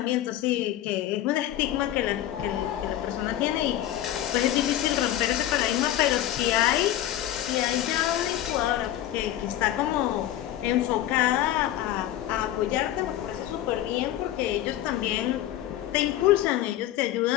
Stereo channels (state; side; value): quieter; right; 13.0 dB